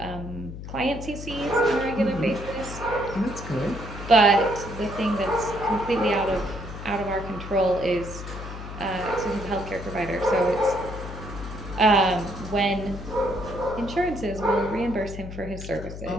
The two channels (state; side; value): noise; left; hum, 10 dB below the sound